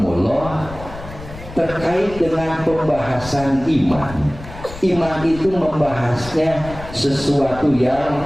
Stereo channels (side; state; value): left; noise; rumble, 14 dB below the sound